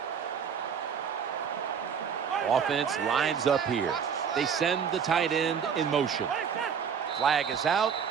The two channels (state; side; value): quieter; left; 7.1 dB